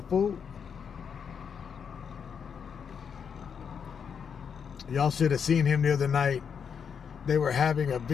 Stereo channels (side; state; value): right; quieter; 6.9 dB